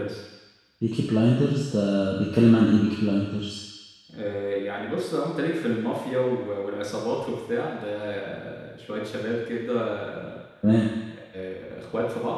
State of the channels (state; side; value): identical; both; correlation 1.00